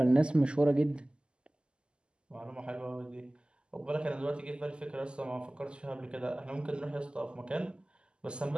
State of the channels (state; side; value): late; left; 0.049 ms